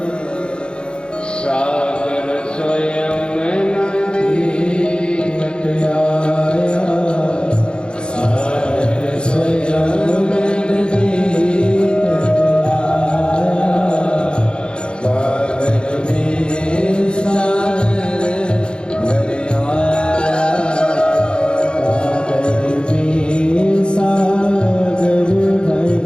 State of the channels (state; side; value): late; right; 0.052 ms